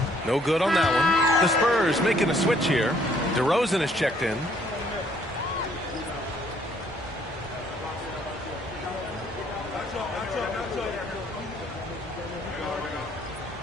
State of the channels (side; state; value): both; normal; correlation 0.64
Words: No good on that one. The Spurs making a switch here. DeRozan is checked in.